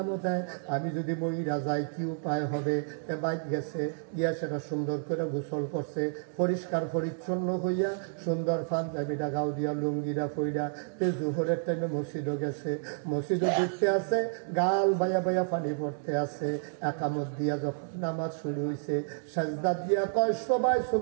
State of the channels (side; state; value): left; silent; digital silence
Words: দেয়, আমি যদি মইরা যাই কি উপায় হবে? বাইক গেছে গিয়া সেটা সুন্দর করে গোসল করছে, পরিষ্কার পরিচ্ছন্ন হইয়া সুন্দর পাঞ্জাবিটা গাও দিয়া লুঙ্গিরা পইরা জোহরের টাইমে মসজিদও গেছে, মসজিদও দেখতে আছে, গাল বাইয়া বাইয়া পানি পড়তে আছে। একামত দিয়া যখন নামাজ শুরু হয়েছে, সাজদা দিয়া কয় সবাই